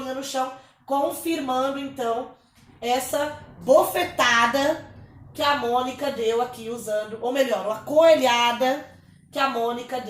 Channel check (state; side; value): identical; both; correlation 1.00